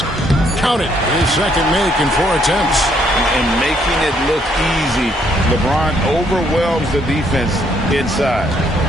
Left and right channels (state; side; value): normal; both; correlation 0.69